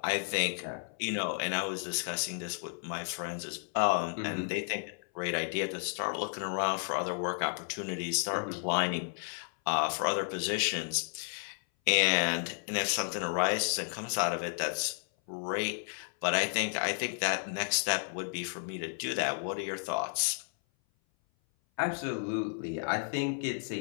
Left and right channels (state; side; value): silent; right; 56 dB below the other